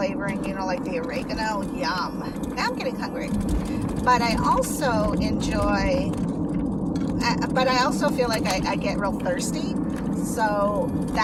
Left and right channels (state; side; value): identical; both; correlation 1.00